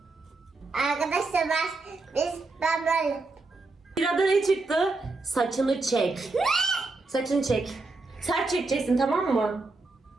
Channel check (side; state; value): left; quieter; 3.5 dB